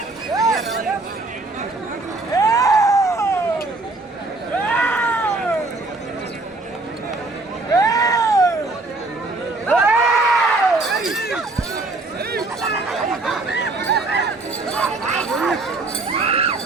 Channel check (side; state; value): left; quieter; 3.2 dB